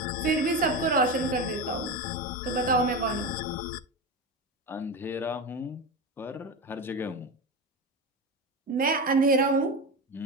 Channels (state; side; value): normal; both; correlation 0.21